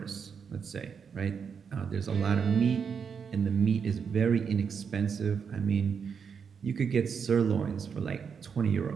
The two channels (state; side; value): quieter; left; 6.5 dB